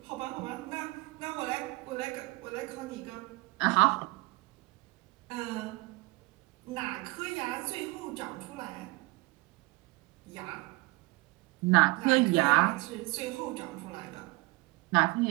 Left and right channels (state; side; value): quieter; left; 23.0 dB